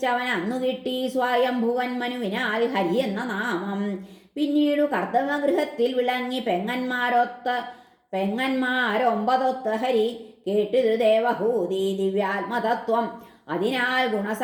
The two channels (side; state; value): both; identical; correlation 1.00